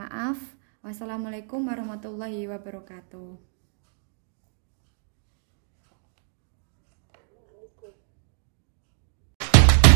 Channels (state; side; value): silent; left; digital silence